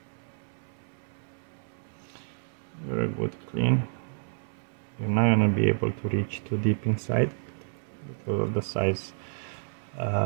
very good, clean. You're not gonna be able to reach too deep inside because of the size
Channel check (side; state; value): left; silent; 58 dB below the other